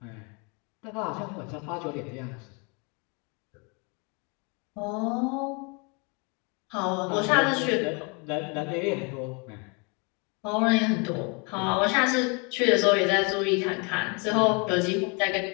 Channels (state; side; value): quieter; right; 32.5 dB